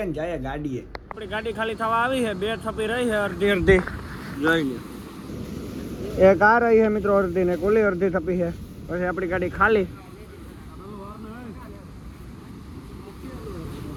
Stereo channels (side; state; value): both; identical; correlation 1.00